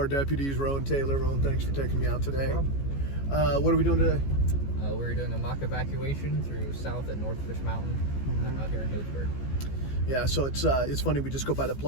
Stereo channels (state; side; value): late; right; 14 ms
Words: deputies, Rowan Taylor. Rowan, thanks for taking me out today. What are we doing today? We're doing a mock evacuation through South and North Fitch Mountain out here in Healdsburg. Yeah, so it's funny. We just go by the